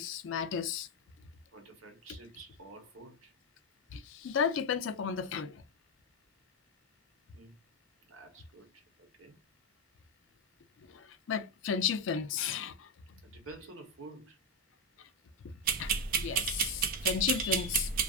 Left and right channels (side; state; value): both; normal; correlation 0.05